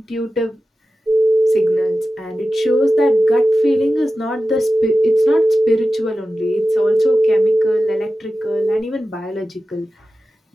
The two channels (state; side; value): normal; both; correlation 0.94